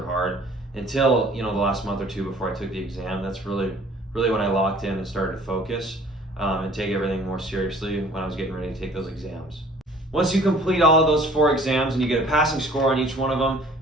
hard until the last month or two before I took the exam. That's really when I locked in and started to focus and take everything more seriously when I was getting ready to take those exams. Once you complete all of those 4 exams and you get a passing score on each one of them,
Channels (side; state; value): both; normal; correlation 0.53